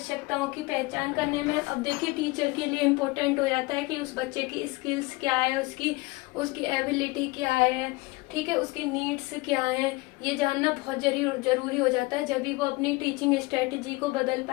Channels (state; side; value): quieter; right; 23.2 dB